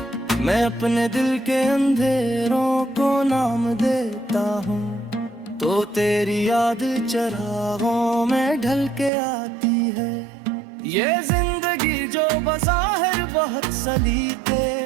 मैं अपने दिल के अंधेरों को नाम देता हूँ, तो तेरी याद चरागों में ढल के आती है। ये जिंदगी जो बज़ाहिर बहुत सलीके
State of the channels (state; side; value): drops out; left; at 9.1 s